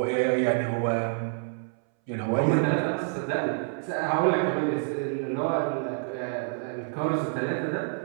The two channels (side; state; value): left; silent; 60 dB below the other